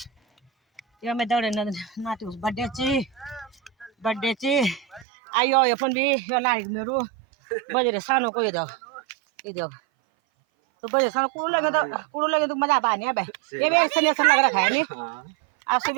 ये मैं दौड़े नाटी उस बर्थडे ची आयो ये पन भी यो लाइक मेरो बजे सानो को ये दो तो बजे सानो कुड़ू लगे तो मजा आने अब ये भी ऐसा ऐसा लग रखा है नहीं आप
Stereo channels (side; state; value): left; drops out; at 5.1 s